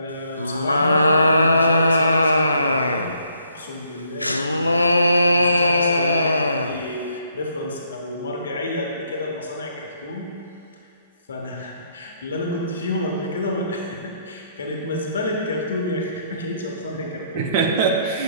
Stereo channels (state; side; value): inverted; both; correlation -0.69